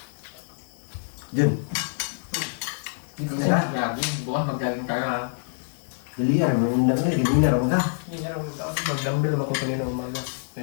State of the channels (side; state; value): right; silent; digital silence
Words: Diyan. Hindi kasi mag-jogging. Bukas mag-jogging tayo ha. Dali yan. Hindi na raw ka. Hindi nga mag-dumbbell naman ko kanina umaga.